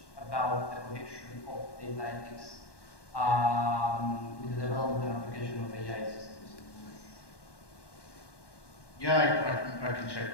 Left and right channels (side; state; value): right; late; 1.1 ms